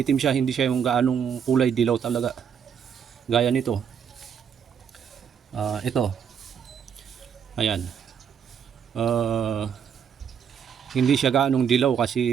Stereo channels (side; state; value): left; quieter; 7.8 dB